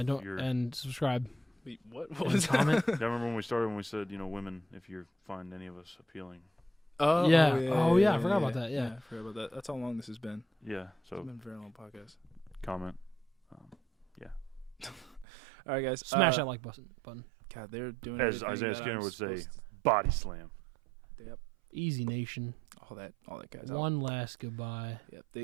And subscribe. Wait, what And was comment. I remember when we started when we said, women, if you find any of us appealing. Oh Yeah. Oh, yeah, I forgot about that, yeah. I forgot about that. That's how long this has been. Yeah, so It's been a very long podcast. comment. All right, guys. Smash that like button. God, they're doing As everything Isaiah that Skinner I'm would say, supposed body slam. to- Yep. Easy Nation. All that, guys. One last goodbye. Yep.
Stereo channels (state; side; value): drops out; left; at 15.2 s